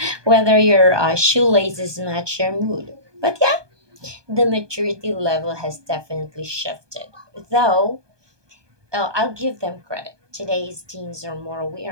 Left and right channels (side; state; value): left; late; 1.2 ms